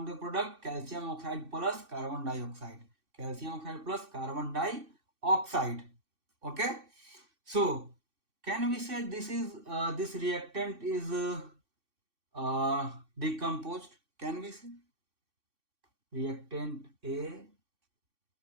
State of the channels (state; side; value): late; left; 3.6 ms